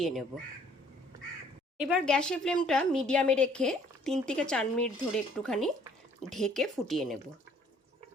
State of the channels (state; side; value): normal; both; correlation 0.59